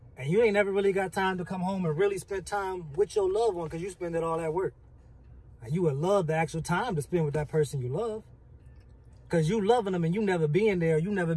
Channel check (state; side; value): identical; both; correlation 1.00